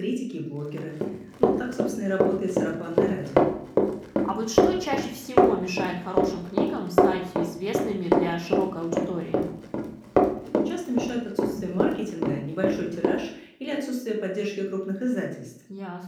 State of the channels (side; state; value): both; identical; correlation 1.00